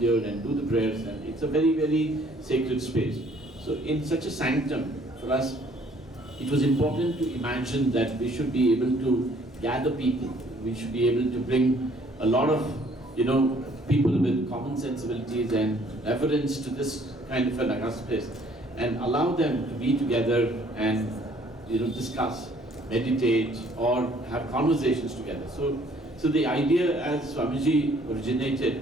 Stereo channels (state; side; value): normal; both; correlation 0.60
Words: and do the prayers, and it's a very, very sacred space. So in such a sanctum, for us, it was important to imagine that we should be able to gather people. We should be able to bring a lot of, people with common sensibilities and reverence to this kind of an august place, and allow them to be together and discuss, meditate, or have conversations together. So the idea, as Swamiji